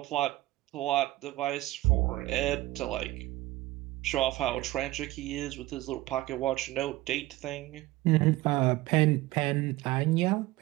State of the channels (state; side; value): quieter; left; 17.9 dB